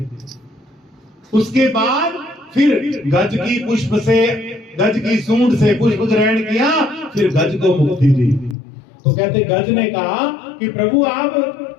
उसके बाद फिर गज की पुष्प से, गज की सूंड से पुष्प ग्रहण किया, फिर गज को मुक्ति दी। तो कहते गज ने कहा कि प्रभु आप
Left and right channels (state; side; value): drops out; right; at 8.6 s